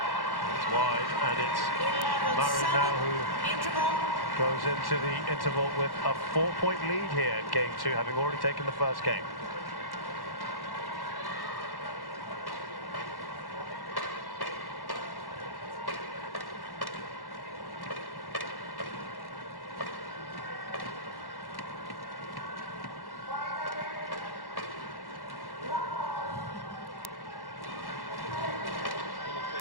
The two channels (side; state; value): right; late; 1.1 ms